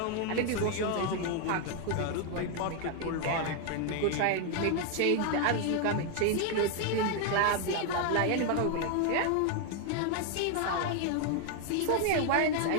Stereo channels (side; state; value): both; different; correlation 0.01